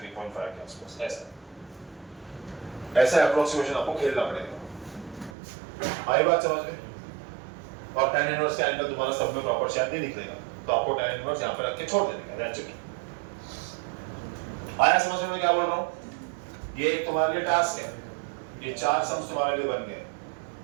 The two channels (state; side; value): drops out; left; at 5.4 s